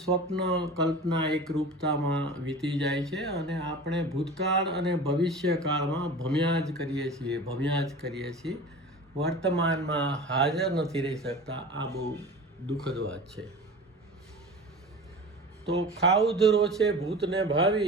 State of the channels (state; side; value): normal; both; correlation 0.36